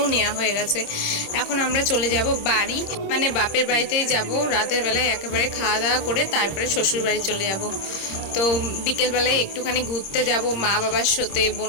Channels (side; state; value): right; late; 26 ms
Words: নেওয়া হয়ে গেছে। এখন আমরা চলে যাব বাড়ি, মানে বাপের বাড়িতেই যাব। রাতের বেলায় একেবারে খাওয়া দাওয়া করে তারপরে শ্বশুর বাড়ি চলে যাব। তো বিকেলবেলায় একটুখানি ঘুরতে যাব মা বাবার সাথে,